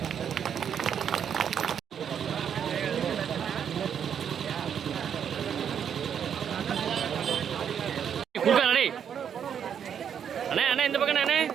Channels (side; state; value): left; quieter; 8.2 dB